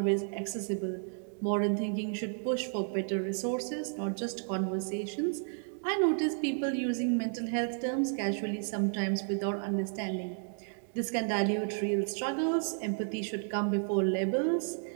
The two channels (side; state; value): left; silent; 56 dB below the other